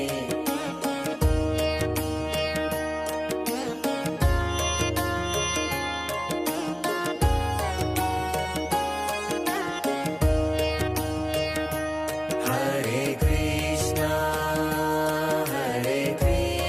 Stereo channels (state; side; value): identical; both; correlation 1.00